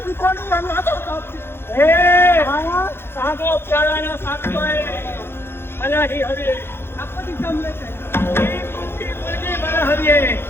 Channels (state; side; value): late; right; 0.11 ms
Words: कोणी आणि आता हे साधो प्यारानं सांगतोय मला ही हवी आहे. आपण जमले ही मोठी मुलगी मला हवी आहे.